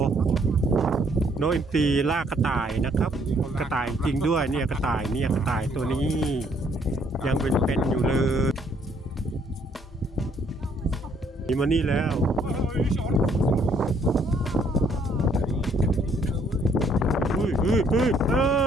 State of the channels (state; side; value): normal; both; correlation 0.66